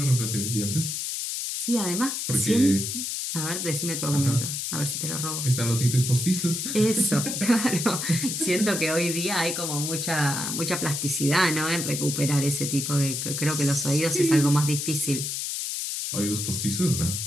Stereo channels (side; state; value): left; noise; hiss, 3 dB below the sound